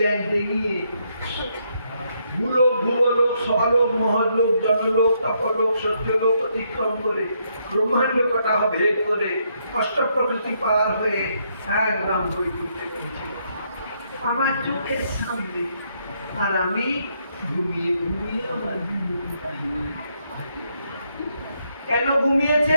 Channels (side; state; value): both; inverted; correlation -0.75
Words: ভূলোক স্বলোক মহলোক জনলোক তপলোক সত্যলোক অতিক্রম করে ব্রহ্মাণ্ড কটাহ ভেদ করে অষ্ট প্রকৃতি পার হয়ে একদম বৈকুণ্ঠে পৌঁছে আমার চোখের সামনে। আর আমি ঘুমিয়ে আমার কেন